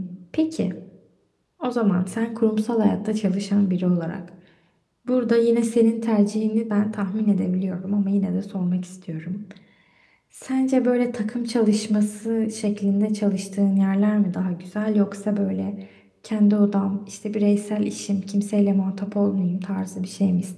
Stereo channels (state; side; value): identical; both; correlation 1.00